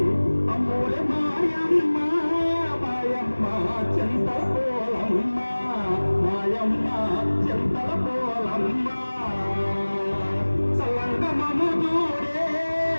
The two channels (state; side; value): inverted; both; correlation -1.00